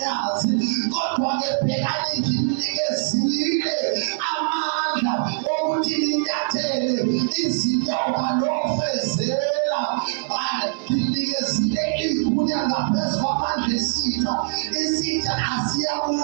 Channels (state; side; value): silent; left; 64 dB below the other